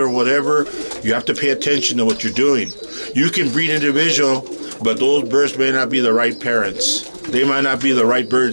whatever, you have to pay attention to what you're doing. You can breed individual, but those birds may not be the right parents. They might not be the right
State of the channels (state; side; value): inverted; both; correlation -1.00